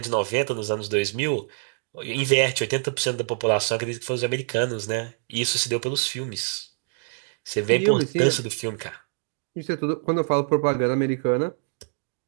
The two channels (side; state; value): left; silent; 58 dB below the other